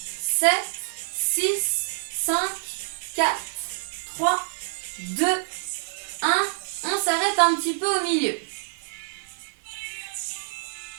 7, 6, 5, 4, 3, 2, 1. On s'arrête un petit peu au milieu.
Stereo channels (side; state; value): left; silent; 57 dB below the other